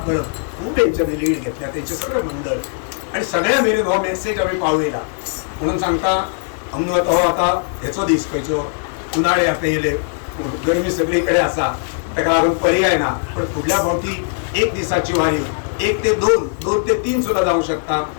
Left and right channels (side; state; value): right; silent; 63 dB below the other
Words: परब खूप यांच्याने लीड घेतल्या. त्यांचे सगळे मंडळ आणि सगळ्या मेरेन हो मेसेज आम्ही पावयला. म्हणून सांगता आमनो आता हेचो दीस खंयचो उन्हाळे आता येयले, गरमी सगळीकडे आसा, ताका लागून पर्याय ना. पण फुडल्या फावटी 1 दिसाची वारी 1 ते 2, 2 ते 3 सुद्धा जाऊ शकता.